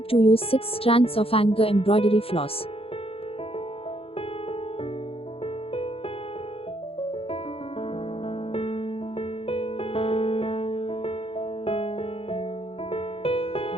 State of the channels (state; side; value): late; right; 0.27 ms